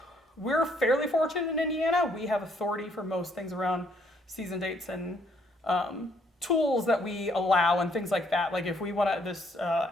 we're fairly fortunate in Indiana. We have authority for most things around season dates and tools that we allow and things like that. Like if we want to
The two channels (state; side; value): normal; both; correlation 0.67